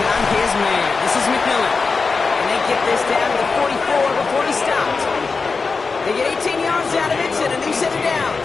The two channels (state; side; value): quieter; right; 4.5 dB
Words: his man. This is McMillan. And they get this down to the 44 before he stopped. They get 18 yards out of it and a new set of